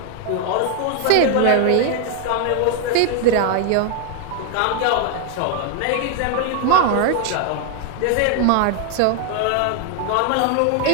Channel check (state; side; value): different; both; correlation 0.00